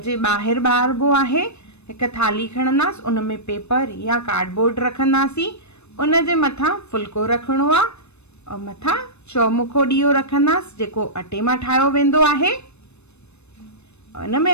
जे ॿाहिरि ॿारिबो आहे। हिकु थाली खणंदासीं, उन में पेपर या कार्डबोर्ड रखंदासीं, उन जे मथां फुल्को रखिणो आहे और मथां चौमुखो ॾीओ रखंदासीं जेको अटे मां ठाहियो वेंदो आहे। उन में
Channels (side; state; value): right; late; 0.81 ms